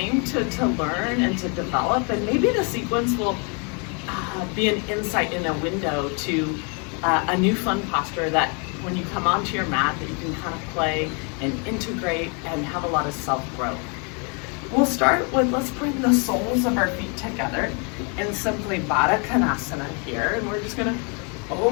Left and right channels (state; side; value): quieter; right; 35.8 dB